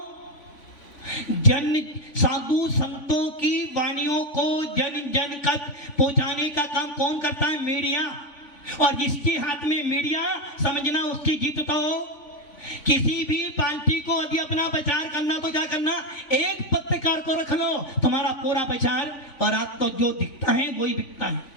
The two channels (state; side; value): late; right; 3.5 ms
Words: जन साधु संतों की वाणियों को जन जन तक पहुंचाने का काम कौन करता है? मीडिया। और जिसके हाथ में मीडिया, समझना उसकी जीत तो हो। किसी भी पार्टी को यदि अपना प्रचार करना तो क्या करना? एक पत्रकार को रख लो, तुम्हारा पूरा प्रचार, और आज तो जो दिखता है वही बिकता है।